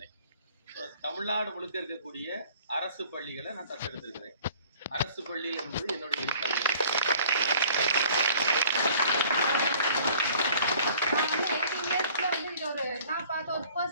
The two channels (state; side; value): inverted; both; correlation -0.52